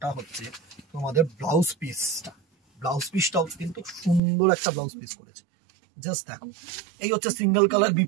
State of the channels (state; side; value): drops out; left; at 4.2 s